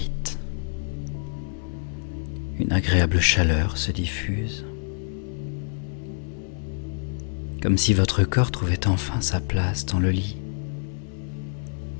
Une agréable chaleur se diffuse, comme si votre corps trouvait enfin sa place dans le lit.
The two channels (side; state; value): right; silent; 61 dB below the other